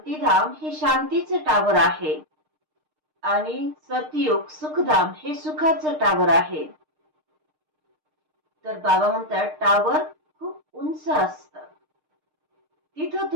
हे शांतीचं टावर आहे आणि सतयुग सुखधाम हे सुखाचं टावर आहे. तर बाबा म्हणतात, टावर खूप उंच असतं, तिथं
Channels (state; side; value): late; left; 6.5 ms